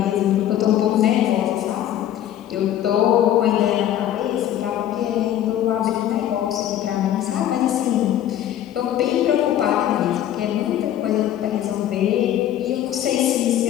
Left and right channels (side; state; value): right; quieter; 11.5 dB